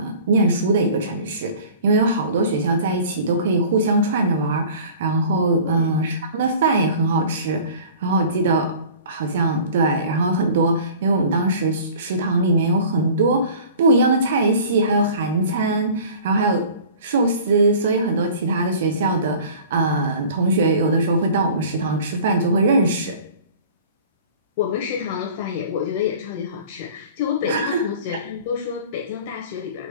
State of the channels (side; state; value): both; inverted; correlation -0.44